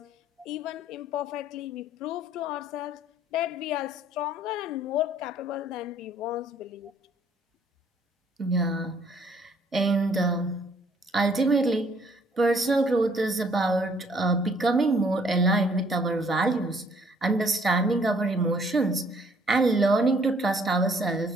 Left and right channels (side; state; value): both; normal; correlation 0.62